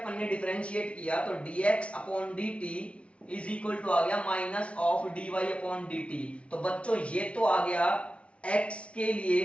ने डिफरेंशिएट किया तो dx upon dt is equal to आ गया minus of dy upon dt। तो बच्चों ये तो आ गया x के लिए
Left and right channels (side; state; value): right; late; 0.061 ms